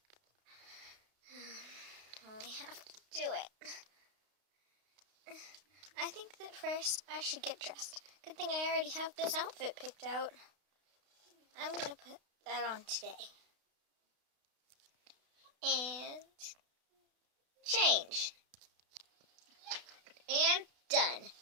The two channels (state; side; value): late; left; 32 ms